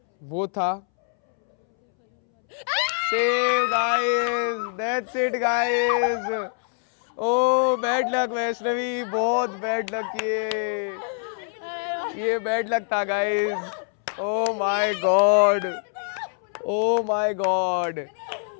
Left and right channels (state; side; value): silent; right; 62 dB below the other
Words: वो था save guys. That's it guys. Oh bad luck Vaishnavi, बहुत बैड लक ये बैड लक था guys. Oh my god, oh my god,